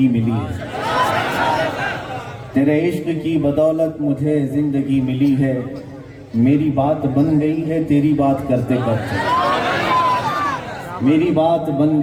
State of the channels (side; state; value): both; identical; correlation 1.00